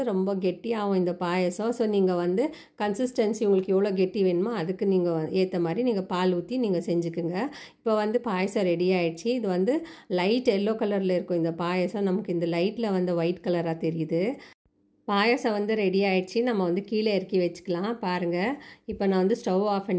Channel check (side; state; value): both; identical; correlation 1.00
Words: ரொம்ப கெட்டியாகும் இந்த பாயசம். ஸோ நீங்கள் வந்து கன்சிஸ்டன்சி உங்களுக்கு எவ்வளோ கெட்டி வேணுமோ அதுக்கு நீங்கள் ஏற்ற மாதிரி நீங்கள் பால் ஊற்றி நீங்கள் செஞ்சுக்குங்க. இப்போ வந்து பாயசம் ரெடி ஆகிடுச்சு. இது வந்து லைட் எல்லோ கலரில் இருக்கும் இந்த பாயசம். நமக்கு இந்த லைட்டில் வந்து ஒயிட் கலராக தெரியுது. பாயசம் வந்து ரெடி ஆகிடுச்சு. நம்ம வந்து கீழே இறக்கி வச்சுக்கலாம். பாருங்கள், இப்போ நான் வந்து ஸ்டவ் ஆஃப்